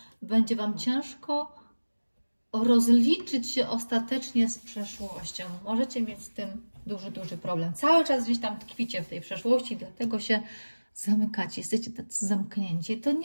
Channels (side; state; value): both; inverted; correlation -1.00